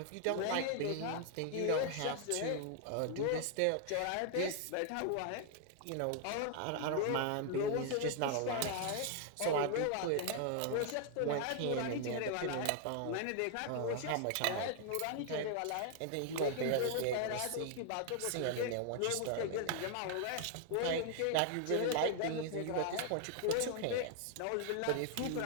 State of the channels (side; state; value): both; different; correlation 0.00